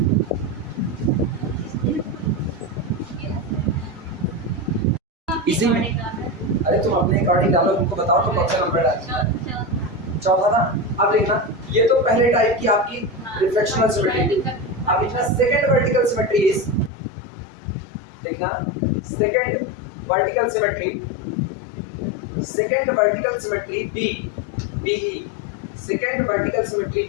इसी में अरे तुम अपने अकॉर्डिंग डालो, तुमको बताओ तो कौन सा नंबर डालना। चौथा ना। अब देखना, ये तो पहले टाइप की आपकी रिफ्लेक्शनल सिमेट्री। अब लिखना सेकंड वर्टिकल सिमेट्री इज, देखना second vertical symmetry B BE second vertical symmetry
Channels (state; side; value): drops out; right; at 16.9 s